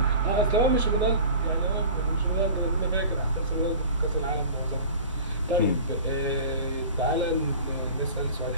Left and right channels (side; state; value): both; inverted; correlation -0.39